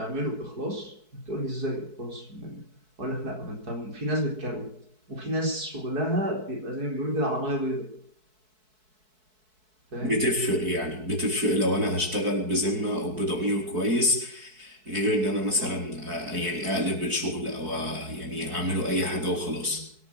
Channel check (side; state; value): left; late; 4.6 ms